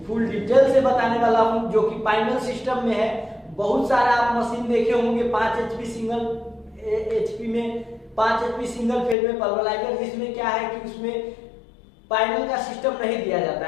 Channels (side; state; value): right; drops out; at 9.2 s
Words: फुल डिटेल से बताने वाला हूँ, जो कि फाइनल सिस्टम में है। बहुत सारा आप मशीन देखे होंगे 5 HP सिंगल HP में 5 HP सिंगल फेज में पल्वराइजर, जिसमें क्या है कि उसमें फाइनल का सिस्टम नहीं दिया जाता